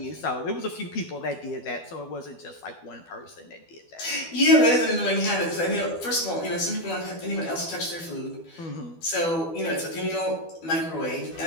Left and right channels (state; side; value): late; right; 12 ms